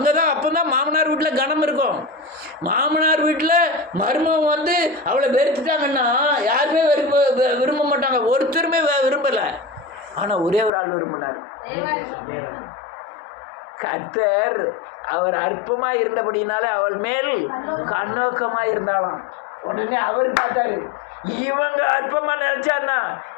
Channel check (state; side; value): drops out; right; at 10.7 s